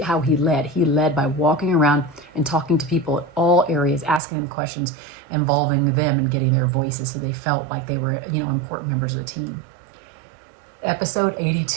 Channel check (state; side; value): drops out; left; at 4.2 s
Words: how he led. He led by walking around and talking to people at all areas, asking them questions, involving them and getting their voices so they felt like they were, important members of the team. Episode